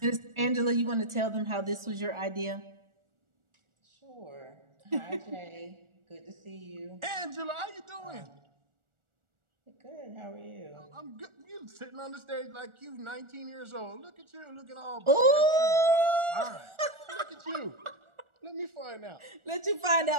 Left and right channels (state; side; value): late; left; 1.4 ms